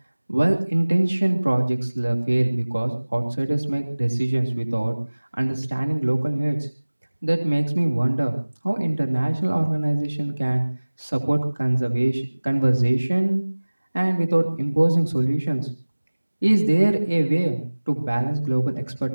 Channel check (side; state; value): both; inverted; correlation -1.00